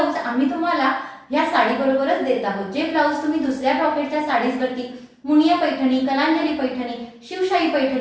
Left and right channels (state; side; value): identical; both; correlation 1.00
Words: आम्ही तुम्हाला या साडी बरोबरच देत आहोत। जे ब्लाउज तुम्ही दुसऱ्या ब्रॉकेटच्या साडीजवरती, मुनिया पैठणी, कलांजली पैठणी, शिवशाही